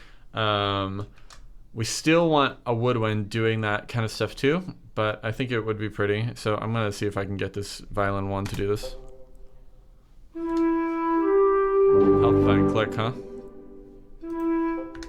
We still want a woodwind doing that kind of stuff too, but I think it would be pretty. So I'm gonna see if I can get this violin one to do this. Help if I can click, huh?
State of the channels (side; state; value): both; identical; correlation 1.00